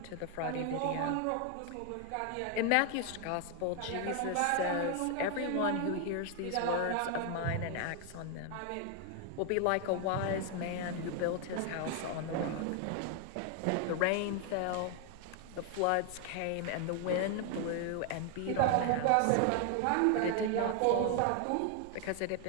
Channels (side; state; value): both; different; correlation 0.00